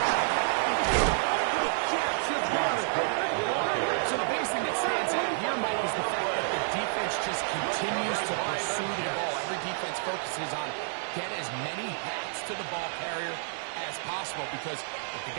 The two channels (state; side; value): silent; left; digital silence